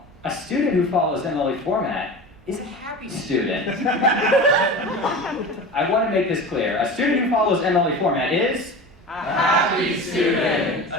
a student who follows MLA format is a happy student. I want to make this clear. A student who follows MLA format is A happy student.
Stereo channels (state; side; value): normal; both; correlation 0.32